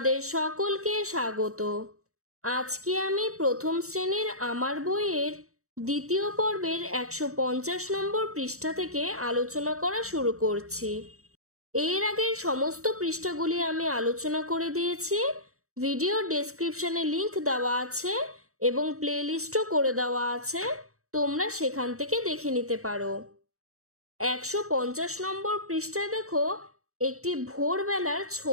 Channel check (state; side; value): late; left; 0.64 ms